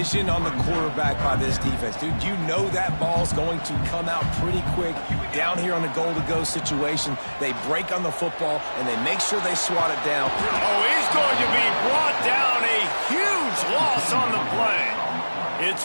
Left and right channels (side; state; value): both; inverted; correlation -1.00